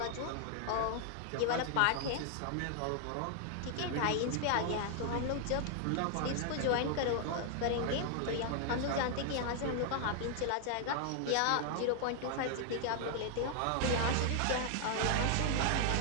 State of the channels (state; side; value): different; both; correlation 0.00